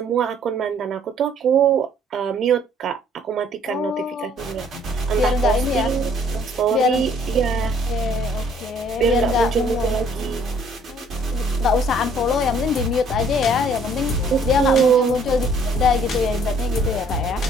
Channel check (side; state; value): both; normal; correlation 0.60